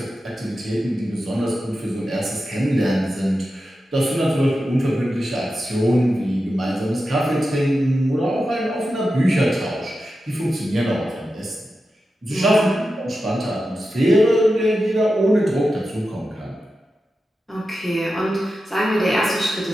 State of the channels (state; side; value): normal; both; correlation 0.91